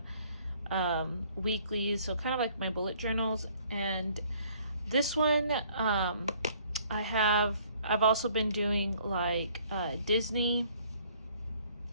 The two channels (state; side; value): inverted; both; correlation -0.60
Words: weekly, so kind of like my bullet journals. And this one, I've also been doing like Disney